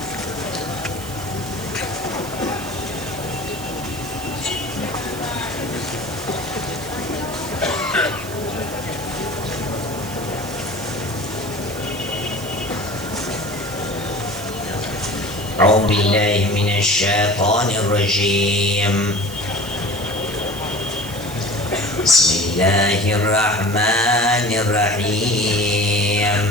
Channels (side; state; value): right; noise; hiss, 14 dB below the sound